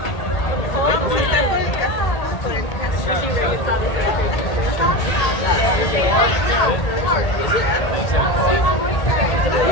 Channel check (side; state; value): right; late; 1.8 ms